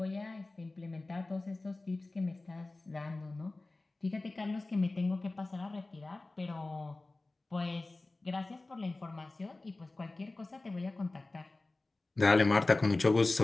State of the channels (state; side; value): quieter; right; 3.1 dB